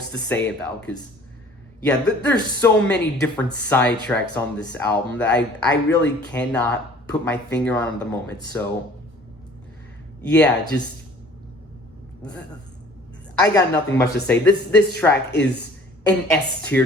to say about, because yeah, there's so many different side tracks on this album that I really cannot put my finger on at the moment. So yeah, I got nothing much to say. This track is an S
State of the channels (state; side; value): normal; both; correlation 0.51